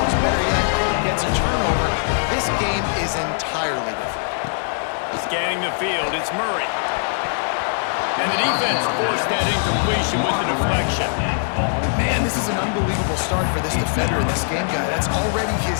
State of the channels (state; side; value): silent; right; digital silence